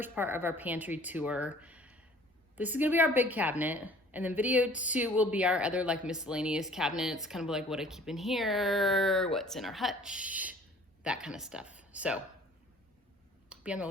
part of our pantry tour. This is gonna be our big cabinet, and then video 2 will be our other like miscellaneous cabinets, kind of like what I keep in here, what's in our hutch, that kind of stuff. So be on the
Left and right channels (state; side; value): normal; both; correlation 0.52